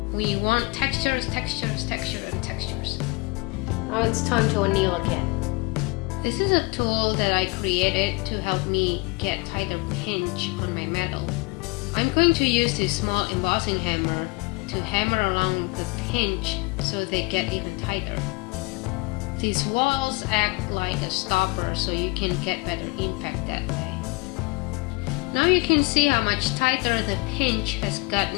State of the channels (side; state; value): right; quieter; 26.3 dB